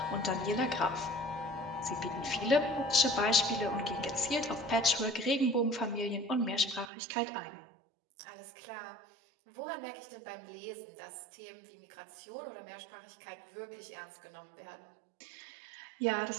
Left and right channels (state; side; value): drops out; left; at 6.9 s